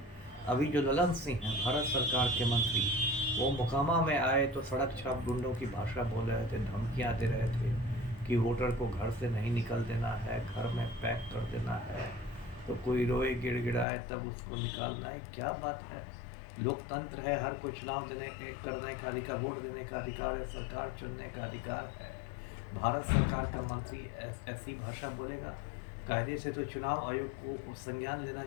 अभी जो ललन सिंह हैं भारत सरकार के मंत्री, वो मोकामा में आए तो सड़क छाप गुंडों की भाषा बोल रहे थे, धमकियां दे रहे थे कि वोटर को घर से नहीं निकल देना है, घर में पैक कर देना है, तो कोई रोए गिड़गिड़ाए तब उसको निकालना है। क्या बात है? लोकतंत्र है, हर कोई चुनाव करने का अधिकार, वोट देने का अधिकार है, सरकार चुनने का अधिकार है। भारत सरकार का मंत्री ऐसी भाषा बोलेगा? कायदे से तो चुनाव आयोग को संज्ञान लेना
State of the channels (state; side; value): drops out; right; at 13.9 s